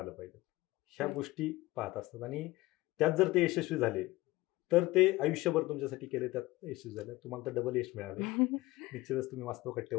पाहिजे, ह्या गोष्टी पाहत असतात. आणि त्यात जर ते यशस्वी झाले तर ते आयुष्यभर तुमच्यासाठी केले, त्यात यशस्वी झाले, तुम्हाला तर डबल यश मिळाले. निश्चितच तुम्ही वास्तव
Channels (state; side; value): quieter; right; 19.4 dB